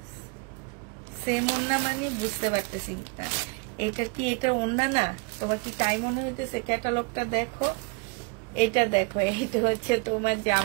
সেম ওন্না মানে বুঝতে পারতেছি না, এটা কি এটা ওন্না না? তোমার কি তাই মনে হইতেছে? ক্যাটালগটা দেখো, এটা দেখো, এইটা হচ্ছে তোমার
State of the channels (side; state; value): left; quieter; 31.6 dB